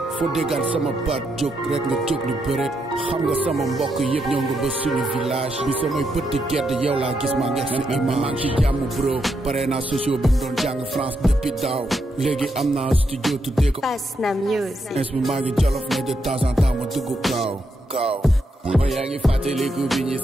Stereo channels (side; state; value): both; normal; correlation 0.81